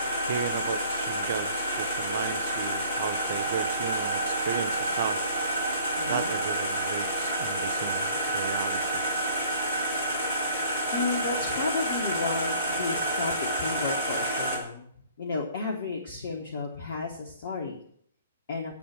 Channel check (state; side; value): inverted; both; correlation -0.53